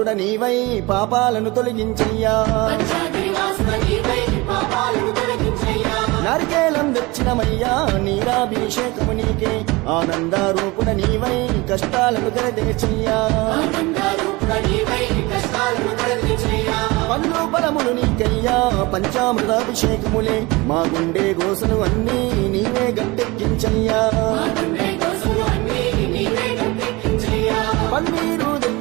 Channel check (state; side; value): quieter; left; 23.3 dB